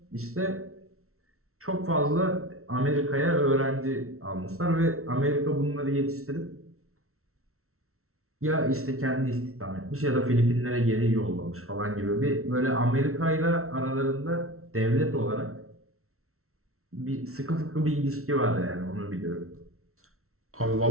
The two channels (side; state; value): left; late; 0.63 ms